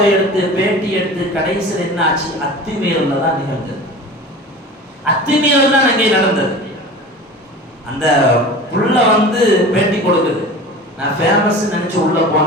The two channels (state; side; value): normal; both; correlation 0.36